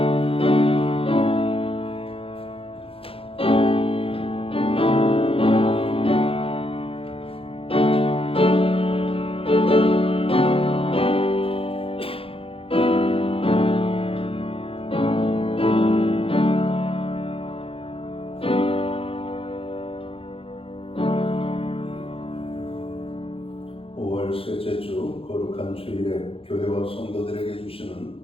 셋째 주 거룩한 주일에 교회와 성도들에게 주시는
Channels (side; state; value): right; late; 0.27 ms